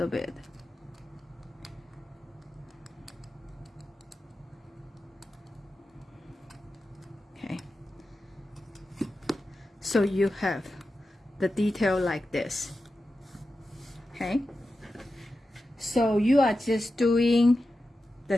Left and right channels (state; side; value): normal; both; correlation 0.92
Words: bit. Okay, so you have the detail like this. Okay, so you are just doing the